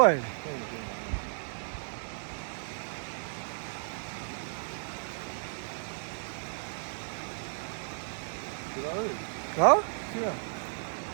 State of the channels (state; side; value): silent; left; 55 dB below the other